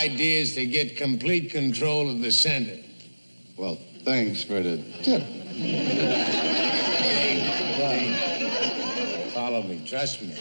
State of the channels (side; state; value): both; inverted; correlation -1.00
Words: is to get complete control of the center. Well, thanks for the tip. Follow me. Trust me.